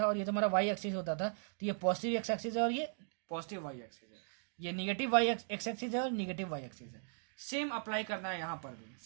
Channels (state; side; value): silent; left; digital silence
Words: और ये तुम्हारा वाई एक्सिस होता था, तो ये पॉजिटिव एक्स एक्सिस है और ये पॉजिटिव वाई एक्सिस है। ये निगेटिव वाई एक्स एक्सिस है और निगेटिव वाई एक्सिस है। सेम अप्लाई करना है यहाँ पर भी,